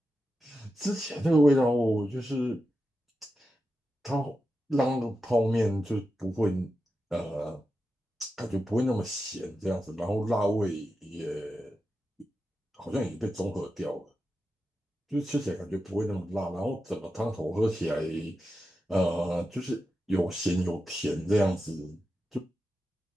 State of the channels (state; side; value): normal; both; correlation 0.90